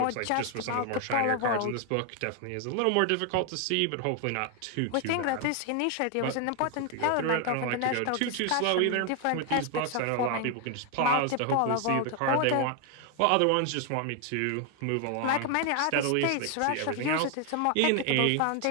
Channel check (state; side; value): different; both; correlation 0.01